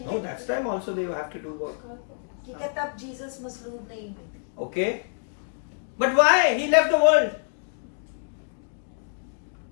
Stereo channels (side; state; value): right; silent; 60 dB below the other